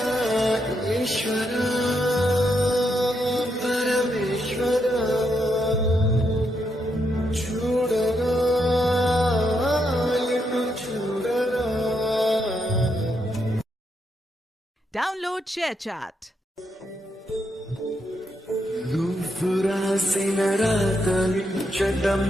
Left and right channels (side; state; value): both; normal; correlation 0.80